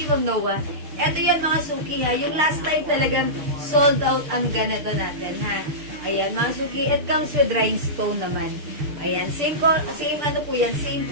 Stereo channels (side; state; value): left; late; 6.7 ms